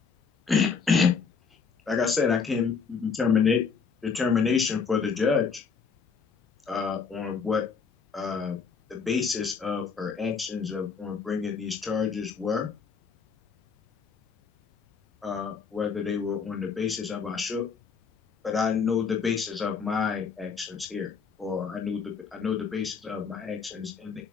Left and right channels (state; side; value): quieter; right; 5.6 dB